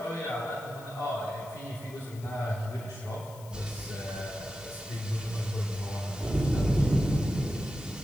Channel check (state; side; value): noise; left; hiss, 20 dB below the sound